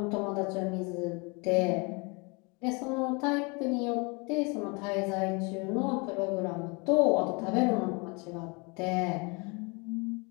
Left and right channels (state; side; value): quieter; right; 29.9 dB